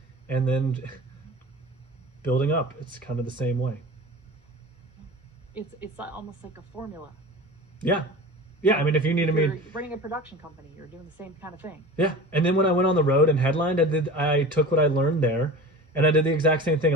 and then building up, it's kind of the same way. It's almost like a formula. Yeah. Yeah, I mean, if you needed me... You're running a production company, you're doing the same kind of thing. Yeah, and then when I went on the road and headlined, I took what I learned there, and I did the exact same thing.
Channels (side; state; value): both; normal; correlation 0.35